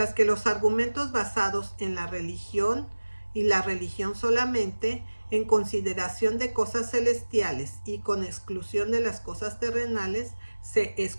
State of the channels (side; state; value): both; inverted; correlation -1.00